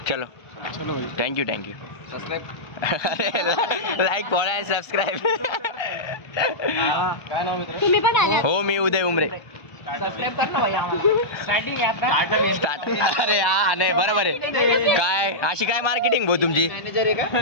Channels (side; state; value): right; late; 1.2 ms